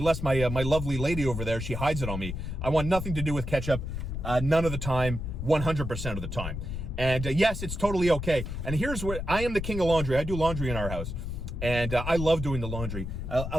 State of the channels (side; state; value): left; noise; rumble, 5 dB below the sound